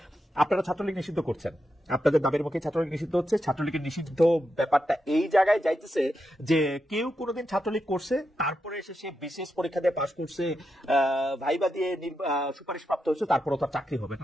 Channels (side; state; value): both; normal; correlation 0.86